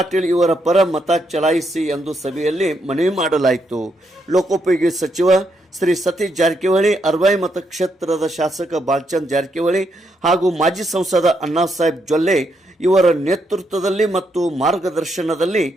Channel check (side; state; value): both; normal; correlation 0.78